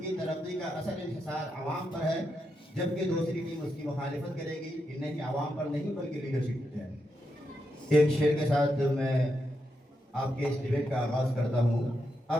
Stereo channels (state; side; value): normal; both; correlation 0.84